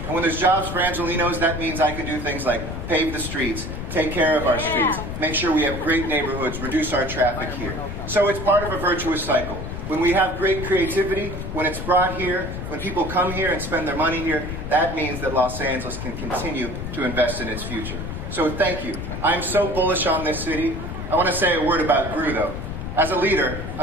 And when there's jobs for Angelinos, that means I can do things like pave the streets, take care of our streets, make sure we have great neighborhoods, reduce our traffic here. So it's part of a virtuous cycle. When we have great creativity, when it's brought here, when people come here and spend their money here, that means that Los Angeles can continue to invest in its future. So thank you. I'm so bullish on this city. I want to say a word about Gru, though. As a leader,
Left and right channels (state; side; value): noise; left; rumble, 6 dB below the sound